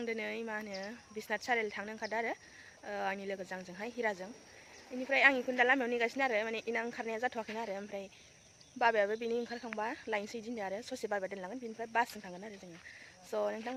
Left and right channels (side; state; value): both; identical; correlation 1.00